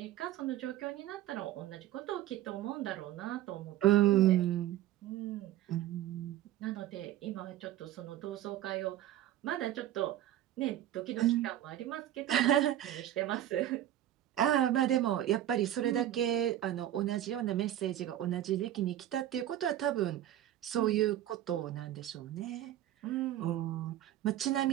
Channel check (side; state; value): left; quieter; 12.6 dB